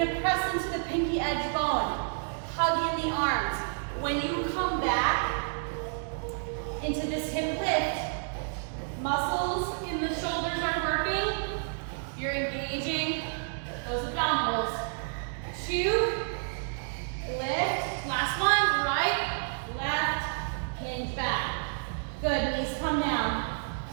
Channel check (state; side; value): silent; left; digital silence